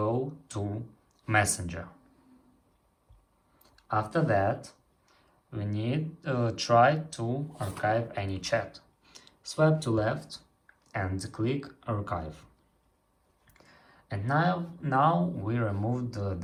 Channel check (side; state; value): both; identical; correlation 1.00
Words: to Messenger. After that we need to try to archive any chat. Swipe to left and click archive. And now we removed